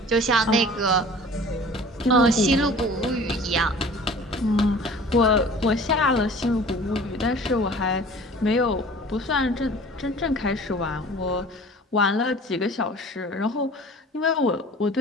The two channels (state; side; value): normal; both; correlation 0.45